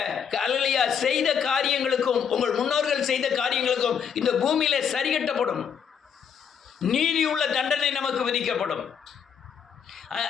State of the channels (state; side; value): quieter; right; 7.4 dB